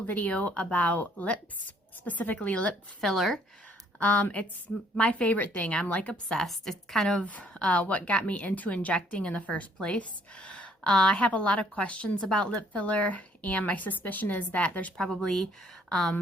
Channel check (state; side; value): normal; both; correlation 0.63